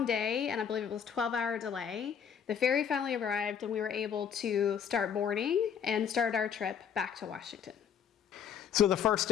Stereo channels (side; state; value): right; quieter; 7.8 dB